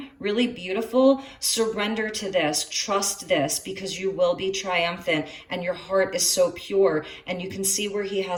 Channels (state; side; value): identical; both; correlation 1.00